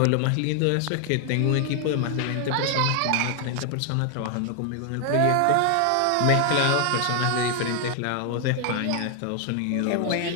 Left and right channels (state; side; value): different; both; correlation 0.00